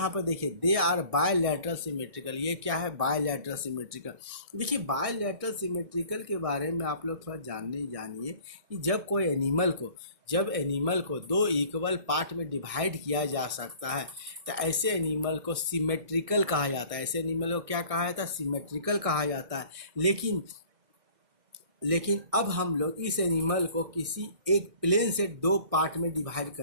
पर देखिए, दे आर बायलैटरल सिमेट्रिकल। ये क्या है, बायलैटरल सिमेट्रिकल। देखिए, बायलैटरल सिमेट्रिकल के बारे में आप लोग थोड़ा जानिए कि जब एनिमल को 2 इक्वल पार्ट में डिवाइड किया जा सकता है तो ऐसे एनिमल को सिमेट्रिकल कहा जाता है। ऐसे एनिमल को क्या कहा जाता है, सिमेट्रिकल कहा जाता है। लेकिन अब हम लोग इस एनिमल को किसी एक प्लेन से 2 पार्ट में डिवाइड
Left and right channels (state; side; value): late; left; 1.6 ms